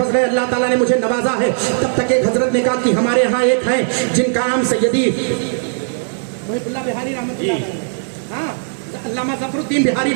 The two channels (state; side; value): silent; left; 62 dB below the other